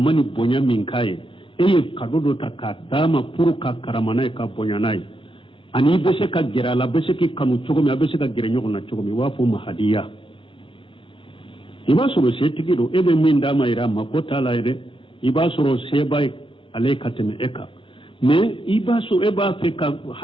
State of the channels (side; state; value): right; late; 0.25 ms